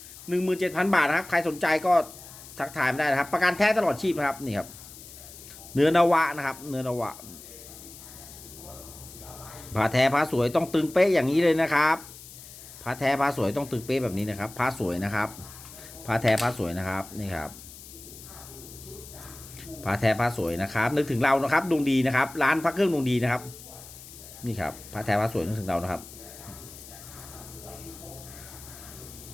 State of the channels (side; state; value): left; noise; hiss, 16 dB below the sound